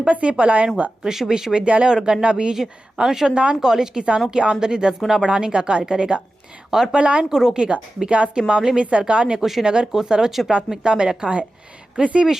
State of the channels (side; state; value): both; normal; correlation 0.94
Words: से पलायन हुआ। कृषि विश्वविद्यालय और गन्ना बीज अनुसंधान कॉलेज किसानों की आमदनी 10 गुना बढ़ाने का कार्य करेगा और पलायन को रोकेगा। विकास के मामले में सरकार ने कुशीनगर को सर्वोच्च प्राथमिकता में रखा है। कृषि